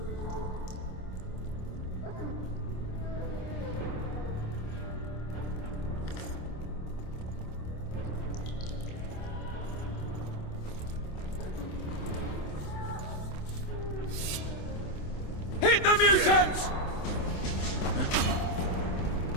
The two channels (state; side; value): late; right; 26 ms